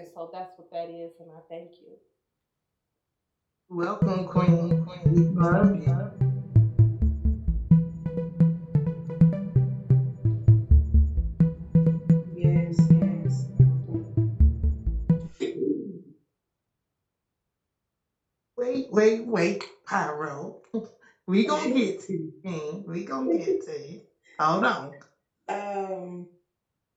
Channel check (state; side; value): identical; both; correlation 1.00